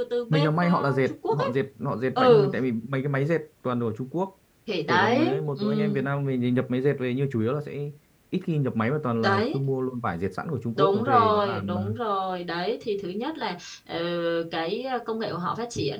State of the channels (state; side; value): identical; both; correlation 1.00